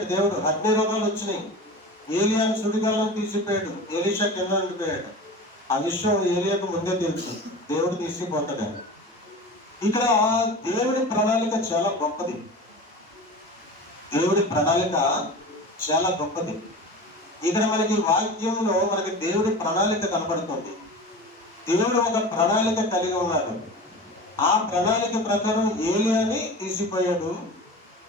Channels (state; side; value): normal; both; correlation 0.33